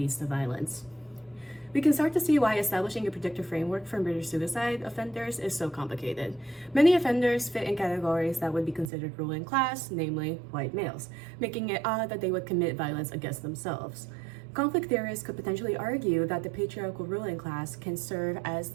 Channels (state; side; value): drops out; left; at 8.9 s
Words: to violence. We can start to see why establishing a predictive framework for murder-suicide offenders is so complicated. Many offenders fit in categories that would be considered ruling class, namely white males, making it odd that they would commit violence against themselves. Conflict theorists could potentially argue that the patriarchal ruling class can serve as